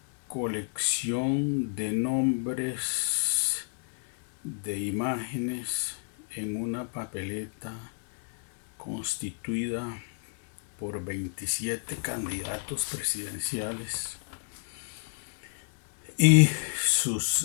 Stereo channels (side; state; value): right; silent; 57 dB below the other